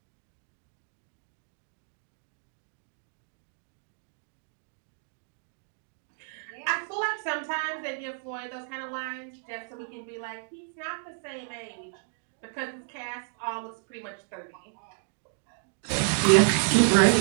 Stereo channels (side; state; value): left; silent; 57 dB below the other